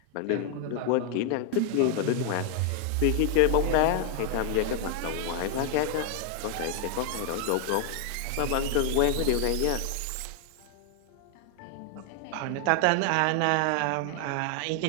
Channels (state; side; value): different; both; correlation 0.00